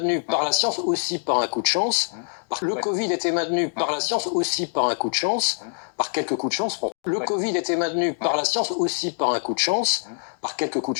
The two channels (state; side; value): silent; right; digital silence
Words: par la science, aussi par un coup de chance. Le Covid était maintenu par la science, aussi par un coup de chance, par quelques coups de chance. Le Covid était maintenu par la science, aussi par un coup de chance, par quelques coups